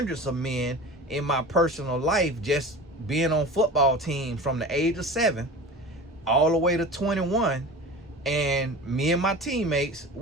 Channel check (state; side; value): normal; both; correlation 0.35